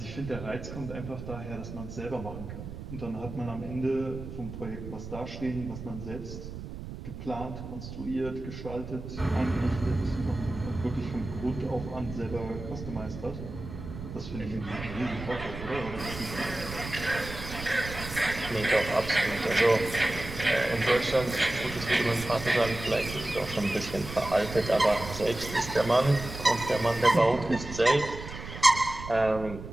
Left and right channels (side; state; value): right; noise; rumble, 10 dB below the sound